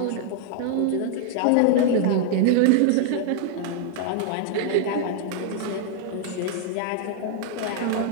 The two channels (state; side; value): different; both; correlation 0.00